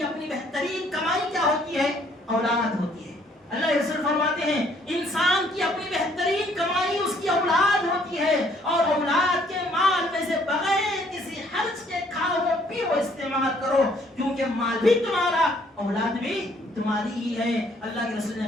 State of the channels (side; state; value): both; normal; correlation 0.64